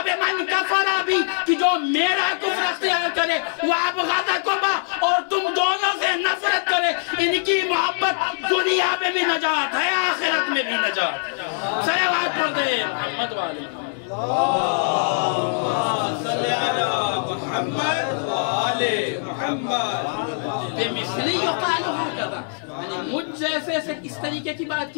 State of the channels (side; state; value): right; silent; 59 dB below the other